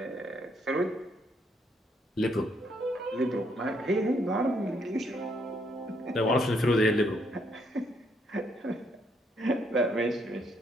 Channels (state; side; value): normal; both; correlation 0.72